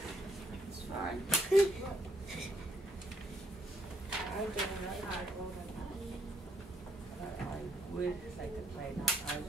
It's fine. would like to play, not I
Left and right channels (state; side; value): normal; both; correlation 0.74